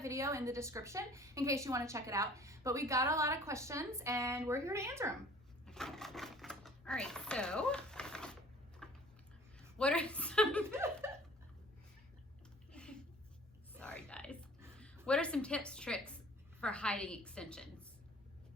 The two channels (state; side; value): normal; both; correlation 0.50